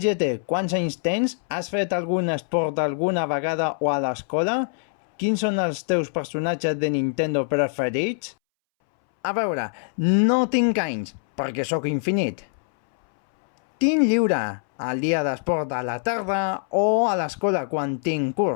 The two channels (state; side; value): silent; right; 63 dB below the other